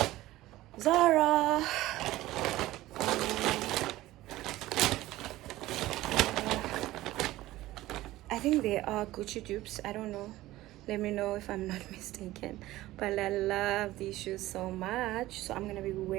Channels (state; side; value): quieter; left; 16.6 dB